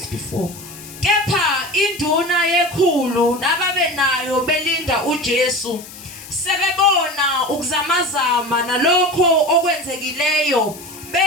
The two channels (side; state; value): left; noise; hiss, 16 dB below the sound